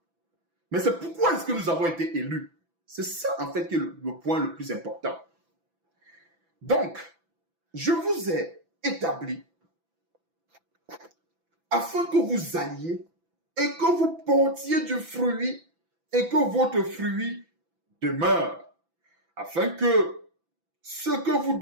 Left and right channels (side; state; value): left; late; 6.0 ms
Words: Mais c'est pourquoi est-ce que nous avons été élus. C'est ça en fait qui est le point le plus important. Donc, je vous ai établi afin que vous alliez et que vous portiez du fruit et que votre fruit demeure, afin que ce que vous